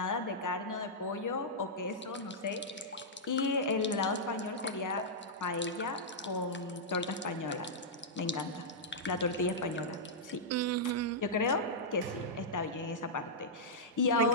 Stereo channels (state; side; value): normal; both; correlation -0.10